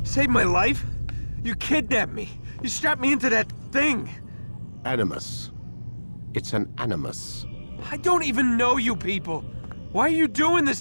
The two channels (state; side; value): inverted; both; correlation -1.00